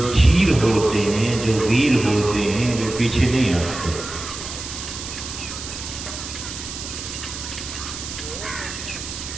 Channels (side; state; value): right; noise; hiss, 9 dB below the sound